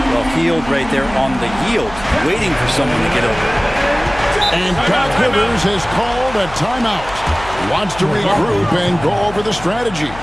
Well, Hield right there on the yield, waiting for someone to get open. And Doc Rivers has called a timeout. Wants to regroup and go over the strategy.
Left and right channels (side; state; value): left; noise; hum, 15 dB below the sound